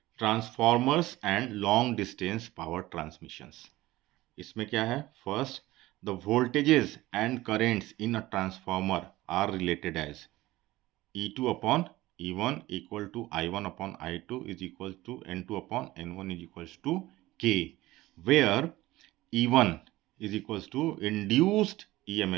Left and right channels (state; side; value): quieter; left; 17.7 dB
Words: transformers and long distance power transmissions. इसमें क्या है? First, the voltages and currents in a transformer are related as E2 upon E1 equal to I1 upon I2 is equal to N2 upon N1 is equals to K, where E1 is equals to induced